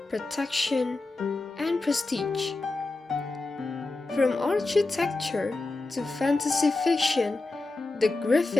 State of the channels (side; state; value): right; quieter; 3.3 dB